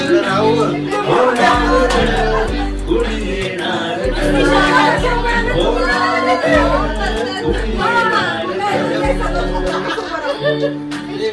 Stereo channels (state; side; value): identical; both; correlation 1.00